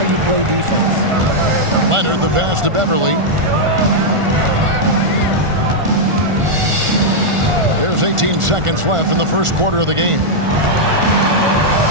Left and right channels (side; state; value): left; late; 1.4 ms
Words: you play defense. Leonard, the pass to Beverly. There's 18 seconds left in the first quarter of the game.